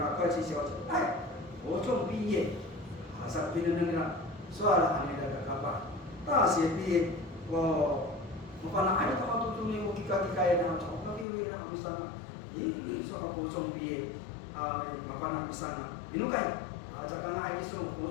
kau isi siapa, ocong biye, asal mendengar soal anak berakapa. 大学毕业，我本来还到都中间我去搞那，我搞那那没上啊，说个高中毕业麻烦那没上啊，你弄开这个那还说高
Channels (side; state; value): right; drops out; at 11.2 s